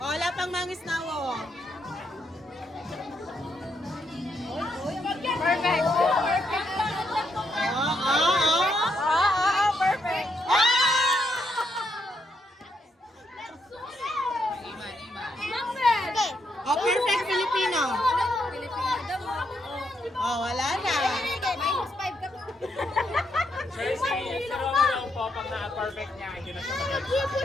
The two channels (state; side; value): normal; both; correlation 0.78